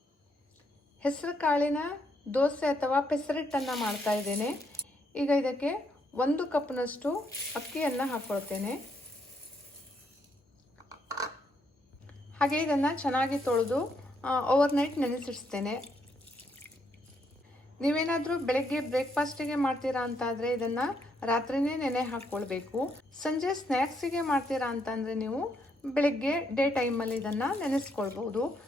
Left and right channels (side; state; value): both; normal; correlation 0.75